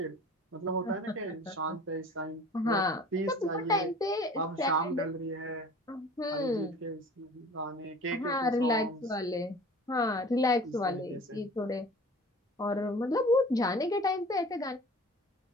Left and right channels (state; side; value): normal; both; correlation 0.44